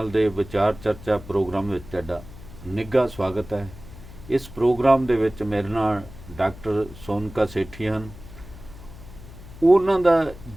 के विचार चर्चा प्रोग्राम में तुहाडा निघा स्वागत है। इस प्रोग्राम दे विच मेरे नाल डॉक्टर सोनका सेठी हैं। उन्हां दा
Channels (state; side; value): noise; left; hum, 17 dB below the sound